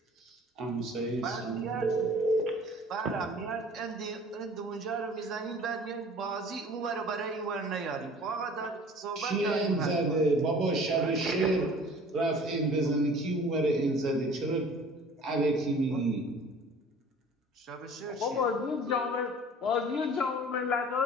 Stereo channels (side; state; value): both; normal; correlation 0.47